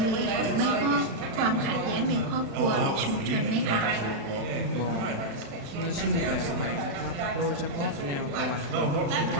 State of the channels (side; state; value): left; late; 36 ms